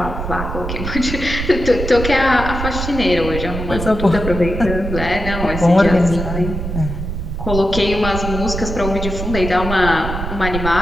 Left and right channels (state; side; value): noise; right; rumble, 5 dB below the sound